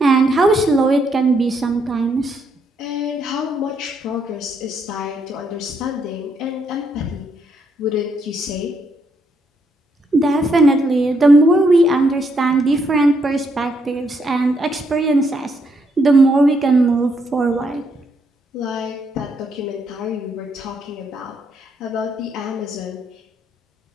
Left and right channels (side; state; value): both; normal; correlation 0.75